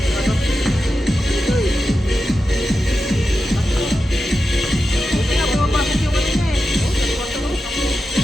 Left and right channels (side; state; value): both; normal; correlation 0.90